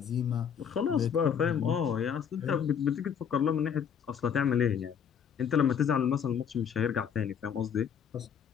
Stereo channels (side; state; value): right; quieter; 7.7 dB